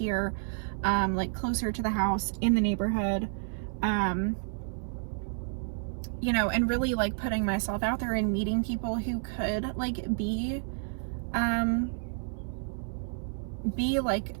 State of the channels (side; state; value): left; silent; 56 dB below the other